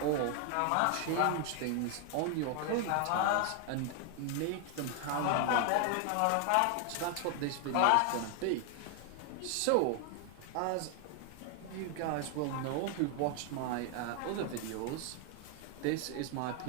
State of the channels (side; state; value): both; different; correlation 0.00